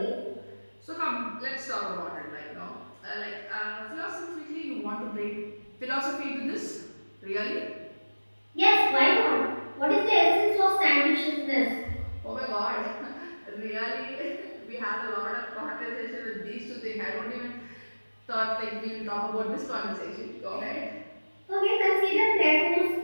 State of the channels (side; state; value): both; inverted; correlation -1.00